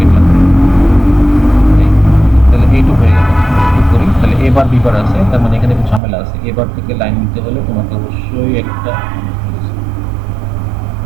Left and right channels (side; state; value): left; drops out; at 6.0 s